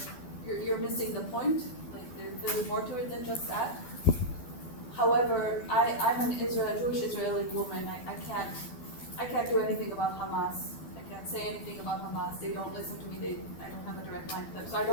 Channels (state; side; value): late; right; 12 ms